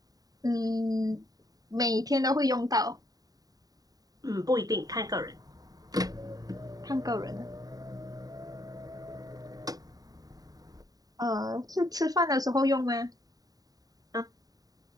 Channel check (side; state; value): left; late; 0.18 ms